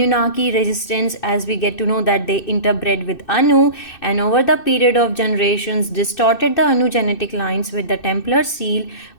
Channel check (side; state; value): right; late; 2.6 ms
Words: resistance, as we get to know that they interbred with Anu, and over the period of generations distorted the Anu genetic lines with the Templar seal.